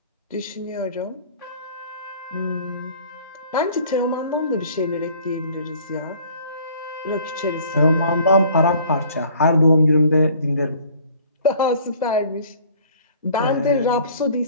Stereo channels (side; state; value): both; inverted; correlation -0.53